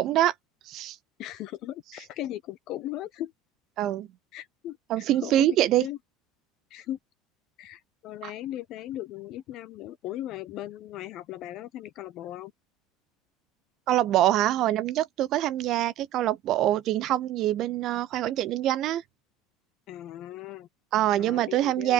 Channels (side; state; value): left; quieter; 9.5 dB